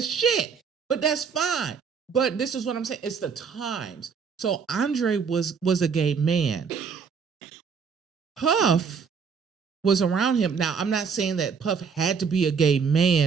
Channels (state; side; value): quieter; left; 6.1 dB